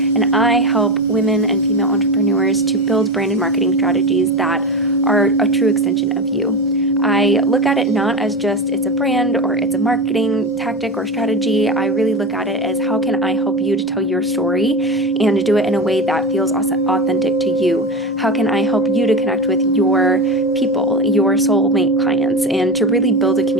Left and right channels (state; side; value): normal; both; correlation 0.22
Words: I help women and female entrepreneurs to build brand and marketing strategies that are a true extension of you. I look at it not as just it's a brand or it's a marketing tactic or strategy. I really look at it as how can I help you to tell your story and to do it in a way that feels authentic to you? How can I help you to connect with your people, your soulmate clients, and to really build a